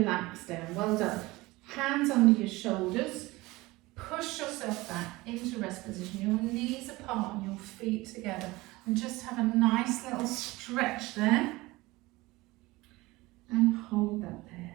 down. Well done. Hands under your shoulders. Push yourself back into rest position. Your knees apart and your feet together. And just have a nice little stretch there. And hold that there.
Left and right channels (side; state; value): left; quieter; 20.8 dB